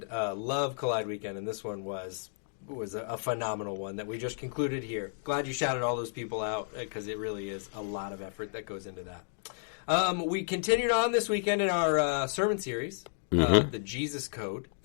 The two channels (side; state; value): right; silent; digital silence